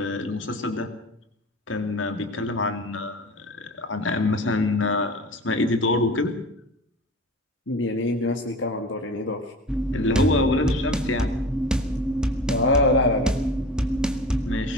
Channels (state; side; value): normal; both; correlation 0.36